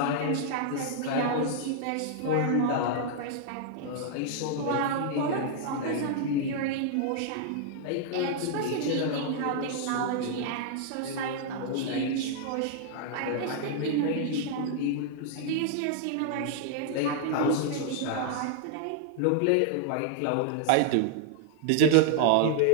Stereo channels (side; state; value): both; different; correlation -0.01